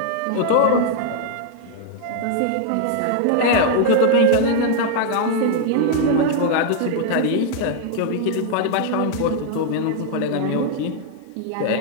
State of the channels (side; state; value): both; different; correlation 0.00